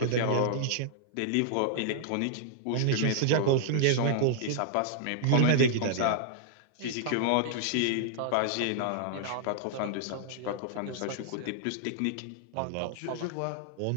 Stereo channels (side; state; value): both; different; correlation -0.01